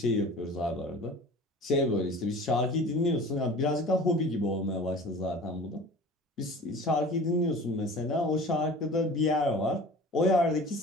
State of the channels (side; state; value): both; normal; correlation 0.41